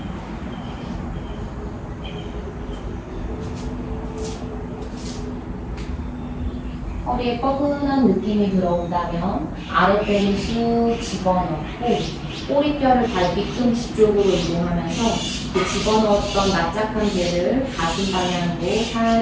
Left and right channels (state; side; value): identical; both; correlation 1.00